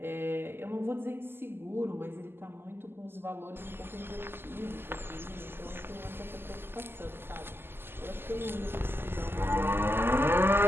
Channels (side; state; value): left; late; 0.11 ms